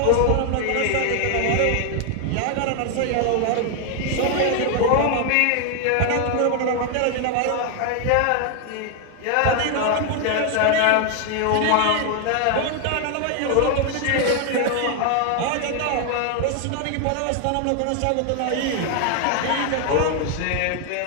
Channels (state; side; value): different; both; correlation 0.00